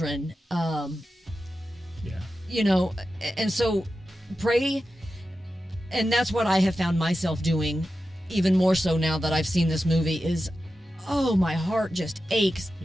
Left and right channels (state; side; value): normal; both; correlation 0.92